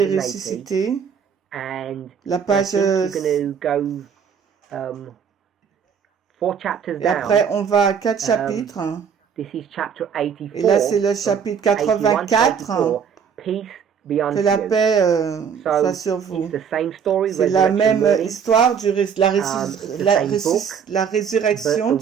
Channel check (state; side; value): quieter; left; 7.1 dB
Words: ressuscité. La page. Et après, on va à 4 chapitres. Et là, c'est le chapitre 84. Que la paix soit sur vous. C'est la même histoire la résurrection